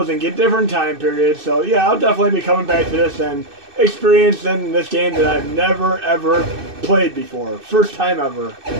and get different time periods. So yeah, I'll definitely be coming back to this and experiencing this game that I've never ever played before. First time ever.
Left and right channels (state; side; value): late; left; 2.6 ms